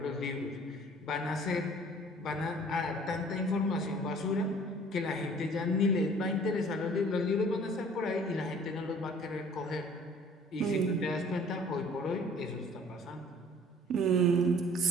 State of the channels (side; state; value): both; normal; correlation 0.52